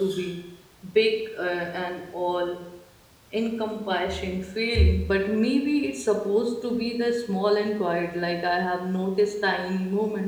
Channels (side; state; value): both; identical; correlation 1.00